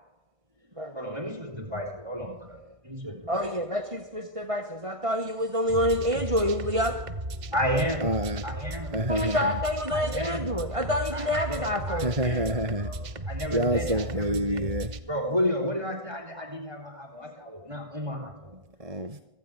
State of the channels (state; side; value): late; left; 1.5 ms